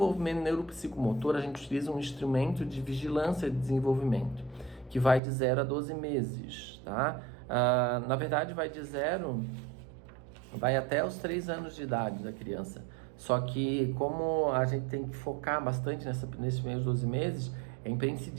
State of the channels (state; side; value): drops out; left; at 5.2 s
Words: neuropsicomotor, a gente utiliza um instrumento de vigilância de desenvolvimento, que vai de 0 a 12 meses, tá? Na verdade, vai até os 3 anos de idade da criança. Só que, como a gente tem que focar bastante nesses primeiros 12 meses, é